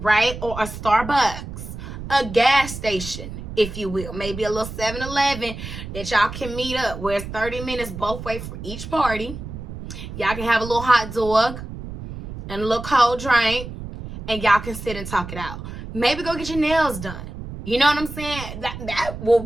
Or a Starbucks, a gas station, if you will. Maybe a little 7-Eleven that y'all can meet up where it's 30 minutes both ways for each party. Y'all can have a little hot dog and a little cold drink, and y'all can sit and talk it out. Maybe go get your nails done. You know what I'm saying? That will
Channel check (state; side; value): noise; right; rumble, 10 dB below the sound